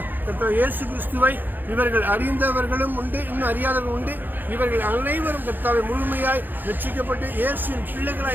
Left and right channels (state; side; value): late; left; 0.089 ms